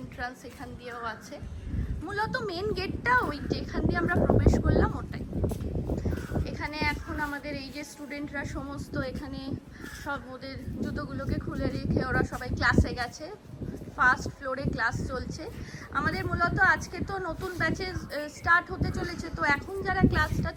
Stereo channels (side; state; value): both; identical; correlation 1.00